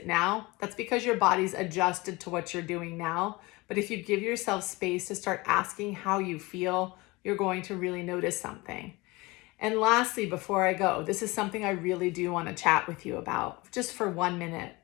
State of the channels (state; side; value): quieter; right; 23.2 dB